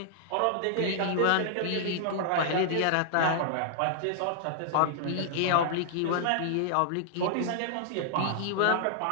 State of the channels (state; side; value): different; both; correlation -0.01